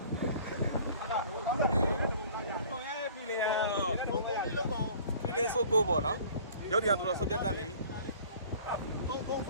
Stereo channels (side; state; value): both; inverted; correlation -0.49